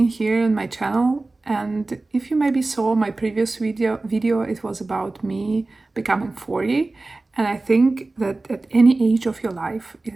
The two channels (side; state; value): left; quieter; 3.2 dB